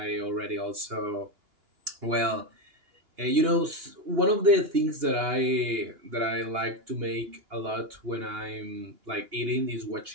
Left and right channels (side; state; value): left; late; 2.9 ms